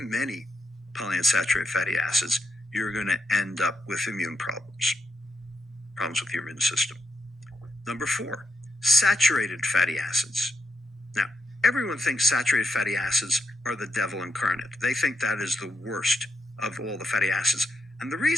many polyunsaturated fatty acids, you're going to end up with immune problems with your immune system. Number 4, saturated fatty acids. Now, everyone thinks saturated fatty acids are the devil incarnate. They think that is the worst of all the fatty acids. And the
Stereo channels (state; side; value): normal; both; correlation 0.84